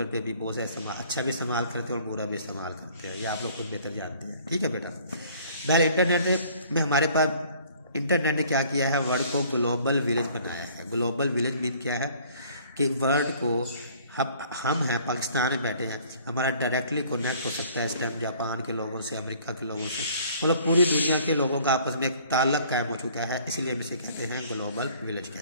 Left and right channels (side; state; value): both; inverted; correlation -0.55